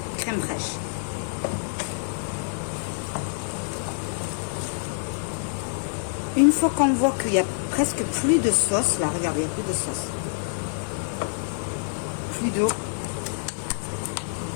crème fraîche. Une fois qu'on voit qu'il n'y a presque plus de sauce, là, regardez, il n'y a plus de sauce, plus d'eau,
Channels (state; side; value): silent; right; 61 dB below the other